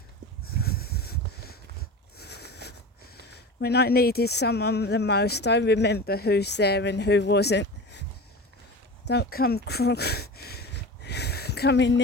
When I needed someone the most, I remember who's there and who wasn't. Don't come coming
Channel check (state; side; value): normal; both; correlation 0.31